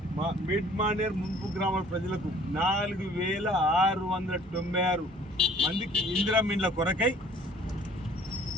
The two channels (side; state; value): both; normal; correlation 0.55